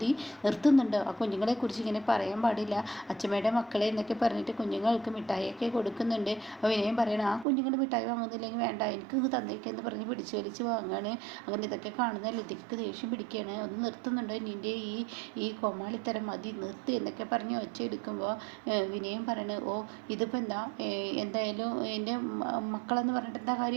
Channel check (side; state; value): left; drops out; at 7.5 s